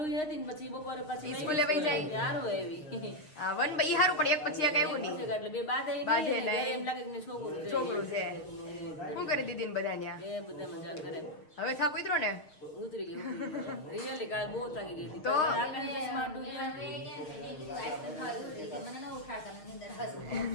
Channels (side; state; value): right; late; 6.5 ms